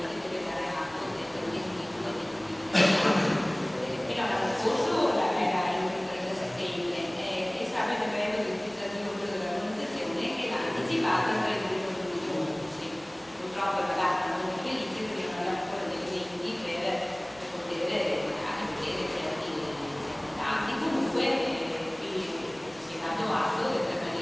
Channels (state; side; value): noise; right; hum, 29 dB below the sound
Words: deve dare atto del adempimento fino all'anno scorso era il 30 settembre e stava il decreto legislativo dell'organizzazione che l'ha anticipato il 31 giugno. Purtroppo è la data non felice perché non abbiamo ancora dei elementi per poter anche vedere certi dati. Comunque si è dato atto del